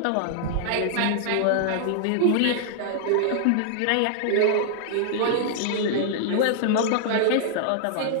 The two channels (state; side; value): different; both; correlation -0.01